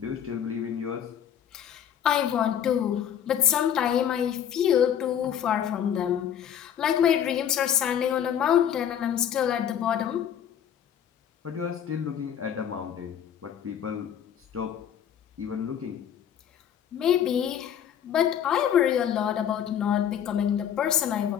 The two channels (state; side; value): quieter; right; 9.3 dB